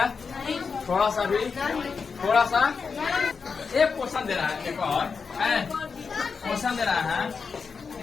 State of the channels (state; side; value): quieter; right; 5.3 dB